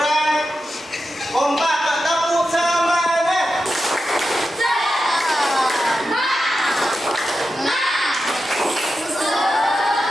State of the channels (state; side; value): normal; both; correlation 0.90